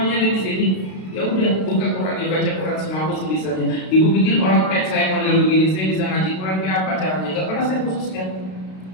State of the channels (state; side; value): late; right; 32 ms